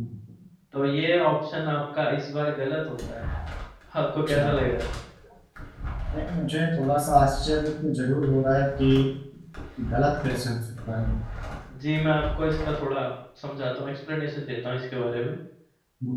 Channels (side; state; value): both; identical; correlation 1.00